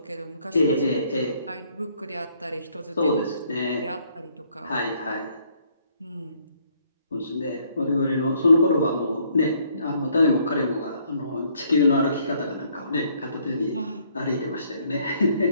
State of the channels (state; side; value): inverted; both; correlation -0.66